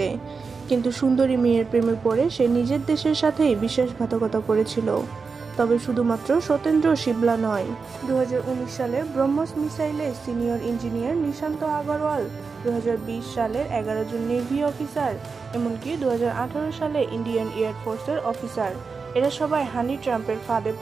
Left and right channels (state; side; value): quieter; left; 4.9 dB